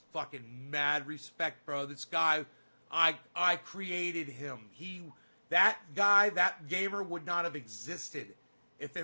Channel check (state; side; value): inverted; both; correlation -1.00